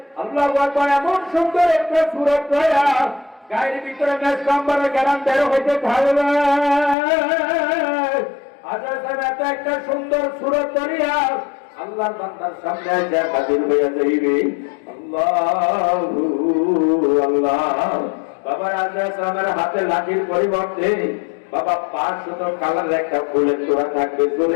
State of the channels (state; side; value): drops out; right; at 7.0 s